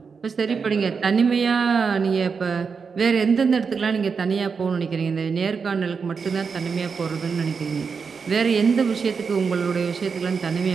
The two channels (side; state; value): left; quieter; 5.5 dB